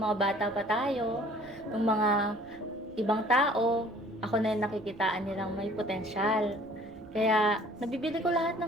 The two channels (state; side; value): noise; right; rumble, 25 dB below the sound